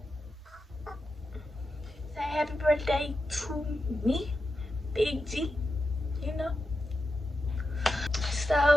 Say happy birthday to me, Big G, you know.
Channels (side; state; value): both; normal; correlation 0.89